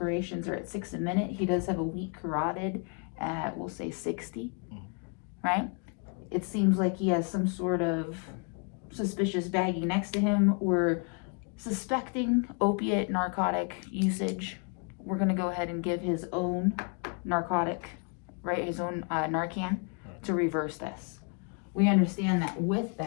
are at 6 a minute. He does have a weak carotid at, we'll say 60, right? It seems like he has some sort of suspicious baggie next to him. We're suspecting opiate narcotic usage. We're gonna go ahead and give his own narcotic, right, his own Narcan to reverse this. We understand that with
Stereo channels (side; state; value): right; quieter; 37.6 dB